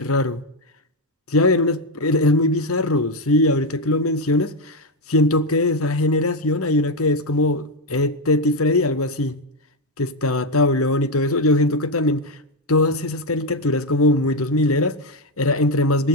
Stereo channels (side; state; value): both; normal; correlation 0.07